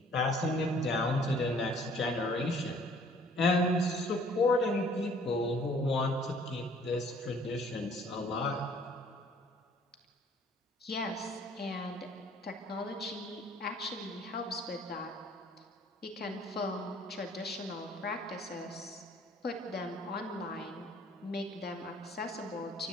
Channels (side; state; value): both; normal; correlation 0.57